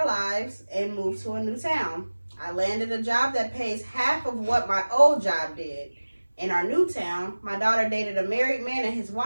lives and move to a new town. I landed a job that pays half of what my old job did. In our new town, my daughter dated a married man and his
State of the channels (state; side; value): inverted; both; correlation -1.00